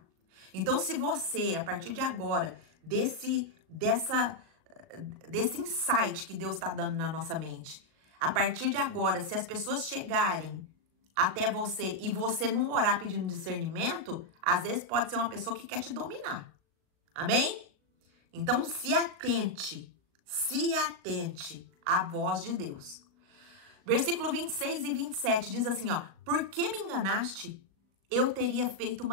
Então, se você, a partir de agora, desse insight que Deus está dando na nossa mente, a partir de agora, se as pessoas chegarem até você e você não orar pedindo discernimento, às vezes pode ser uma pessoa que quer te dominar. Amém? Então, se atente à voz de Deus. Versículo 26 e 27 diz assim, ó, por que me enganaste? Eu teria feito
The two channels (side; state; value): left; late; 37 ms